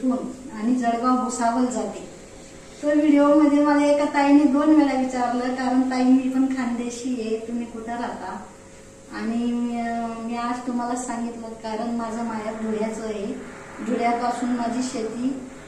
आणि जळगाव भुसावळ जाते. तो व्हिडिओ मध्ये मला एका ताईने 2 वेळा विचारलं, कारण ताई मी पण खानदेशी आहे, तुम्ही कुठं राहता. आणि मी आज तुम्हाला सांगितलं कारण माझं माहेर धुळ्याचं आहे. धुळ्यापासून माझी शेती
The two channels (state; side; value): identical; both; correlation 1.00